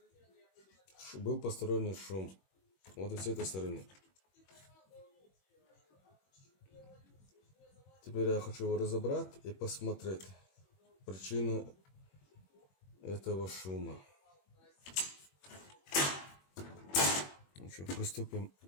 Был посторонний шум. Вот и с этой стороны. Теперь я хочу его разобрать и посмотреть причину этого шума. Ну что, приступим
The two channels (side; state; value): right; late; 21 ms